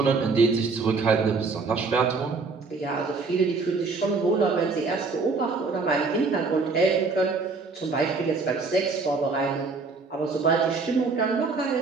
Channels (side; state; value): left; quieter; 4.3 dB